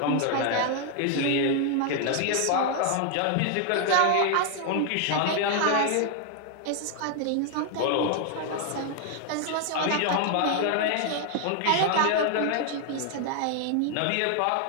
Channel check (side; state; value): both; different; correlation 0.00